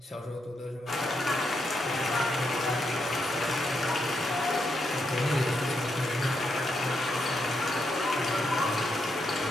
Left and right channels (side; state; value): both; normal; correlation 0.81